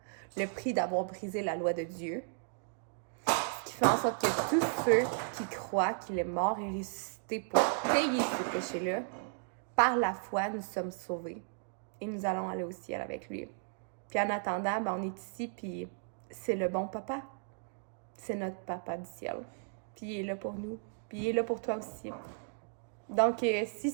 le prix d'avoir brisé la loi de Dieu, ce qui fait en sorte que tous ceux qui croient qu'il est mort et ressuscité pour payer ce péché-là, par la foi, nous sommes sauvés. Et nous allons aller au ciel avec lui. Puis en attendant, on est ici, puis c'est le bon papa. C'est notre papa du ciel. Puis il est là pour nous. Puis il est là pour toi aussi. Donc, si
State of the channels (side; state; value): left; silent; 55 dB below the other